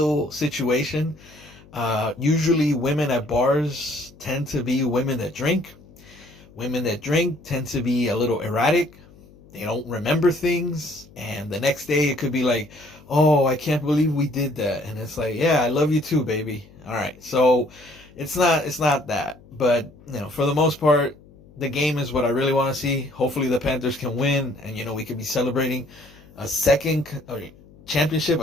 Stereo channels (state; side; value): noise; left; hum, 24 dB below the sound